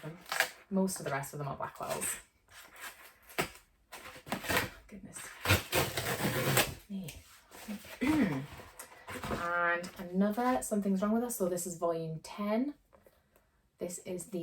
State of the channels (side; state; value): both; identical; correlation 1.00